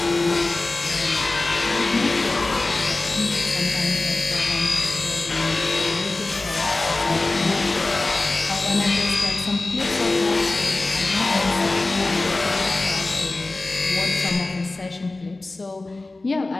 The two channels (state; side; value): quieter; right; 3.1 dB